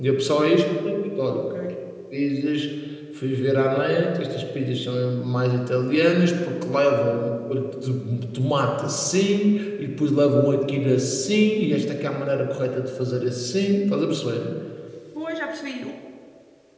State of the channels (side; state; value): both; identical; correlation 1.00